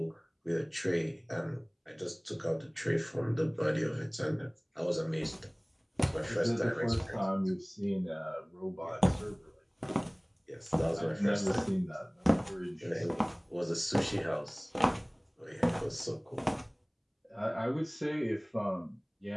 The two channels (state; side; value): identical; both; correlation 1.00